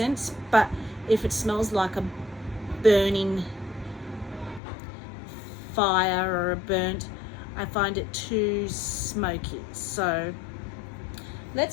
but if it smells like a burning fire or a burnt, I find it too smoky. So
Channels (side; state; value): right; drops out; at 4.6 s